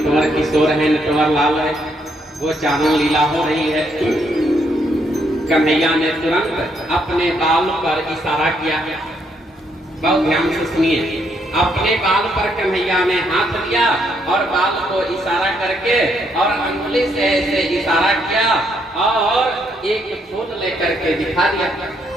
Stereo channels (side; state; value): both; normal; correlation 0.73